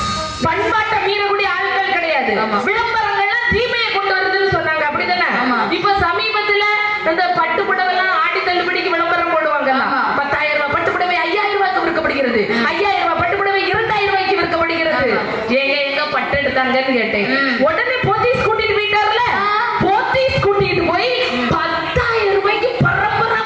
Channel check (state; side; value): identical; both; correlation 1.00